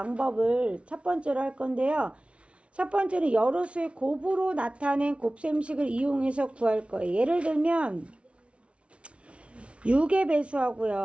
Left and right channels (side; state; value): left; late; 0.061 ms